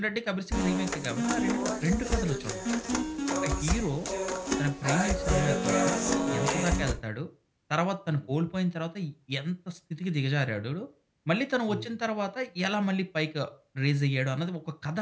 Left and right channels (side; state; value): both; identical; correlation 1.00